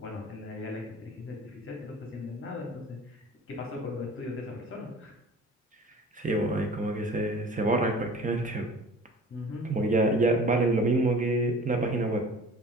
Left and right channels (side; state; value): both; normal; correlation 0.44